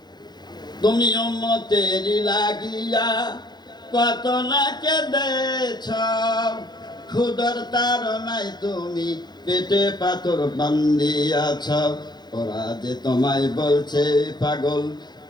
তুমি উম্মতের লাগিয়া কত না কেঁদেছ, ক্ষুধার তাড়নায় তুমি পেটে পাথর বান্ধিয়াছ। ওরা যে তোমায় বলছে পাগল,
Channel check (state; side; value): late; right; 0.21 ms